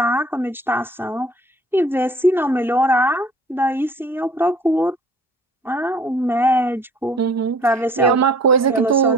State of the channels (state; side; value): normal; both; correlation 0.53